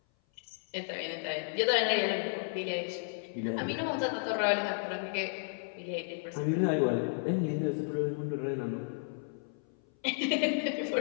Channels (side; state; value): right; silent; 56 dB below the other